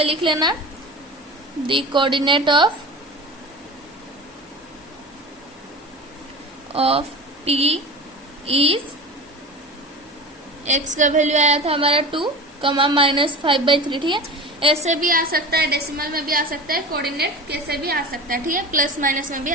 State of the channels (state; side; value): normal; both; correlation 0.32